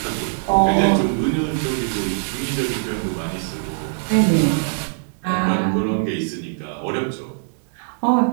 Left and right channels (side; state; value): left; silent; digital silence